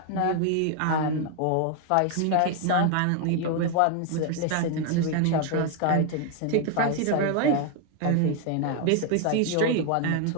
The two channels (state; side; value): different; both; correlation 0.01